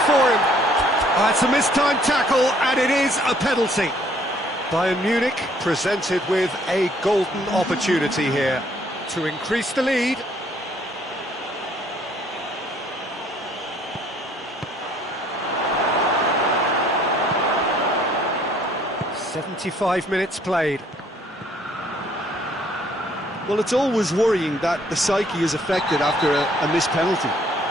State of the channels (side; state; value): both; normal; correlation 0.62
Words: for him. Oh, it's a mistimed tackle, and it is a penalty. Bayern Munich presented with a golden opportunity here to increase the lead. "75 minutes played." Well, it's always worrying that the psyche is affected after a missed penalty.